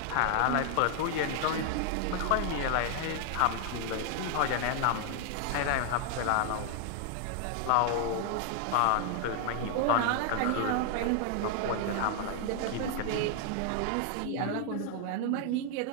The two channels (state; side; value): different; both; correlation 0.00